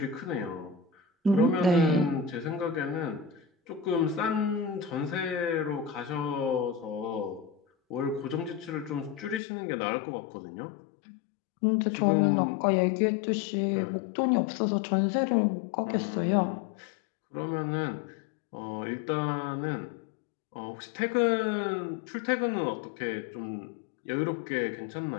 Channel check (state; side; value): drops out; right; at 9.4 s